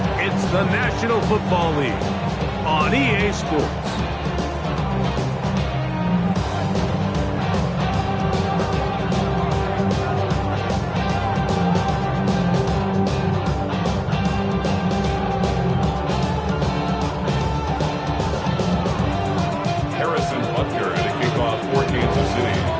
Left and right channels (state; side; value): identical; both; correlation 1.00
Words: It's the National Football League on EA Sports.